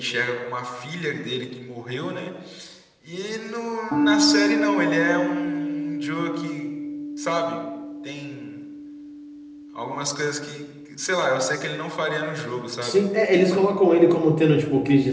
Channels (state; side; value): identical; both; correlation 1.00